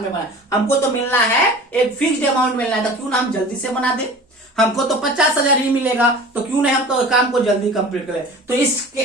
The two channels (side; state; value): both; normal; correlation 0.40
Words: बनाए, हमको तो मिलना है एक फिक्स्ड अमाउंट मिलना है। तो क्यों ना हम जल्दी से बना दे, हमको तो 50,000 ही मिलेगा, तो क्यों नहीं हम तो काम को जल्दी कंप्लीट करें। तो